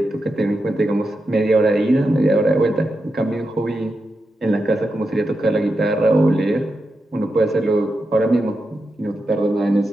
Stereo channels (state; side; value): normal; both; correlation 0.88